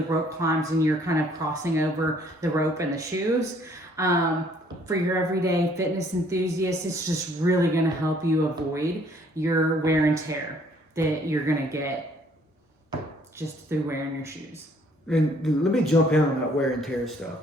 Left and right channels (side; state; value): both; normal; correlation 0.62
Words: rope climbs and you're kind of crossing over the rope and the shoes. For your everyday fitness enthusiasts, it's just really going to help you avoid your wear and tear that you're going to get just through wearing your shoes. And let me jump in on that wear and tear stuff,